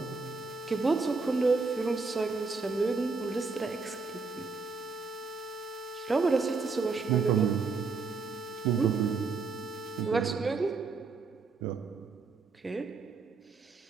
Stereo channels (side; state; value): left; quieter; 4.3 dB